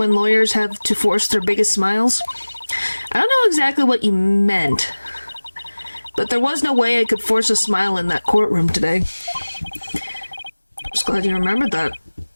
lawyers have to force their biggest smiles. I don't know exactly what you meant, but there was no way I could force a smile in that courtroom today. Just glad you remembered that.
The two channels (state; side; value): inverted; both; correlation -1.00